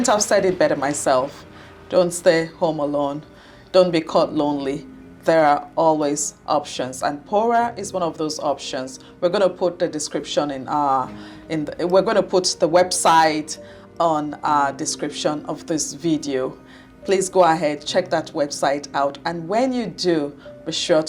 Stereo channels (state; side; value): identical; both; correlation 1.00